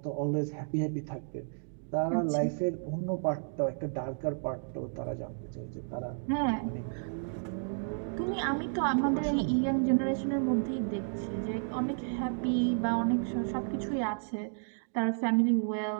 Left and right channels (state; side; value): silent; left; digital silence